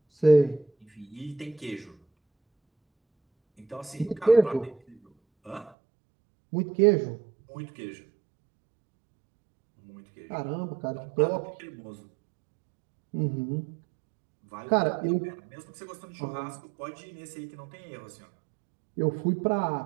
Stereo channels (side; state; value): left; drops out; at 5.7 s